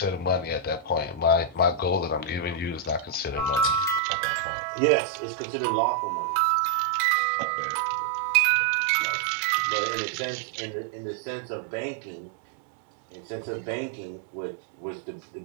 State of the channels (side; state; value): left; drops out; at 4.0 s